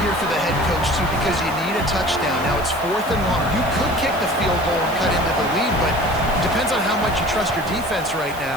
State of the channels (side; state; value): right; noise; hiss, 17 dB below the sound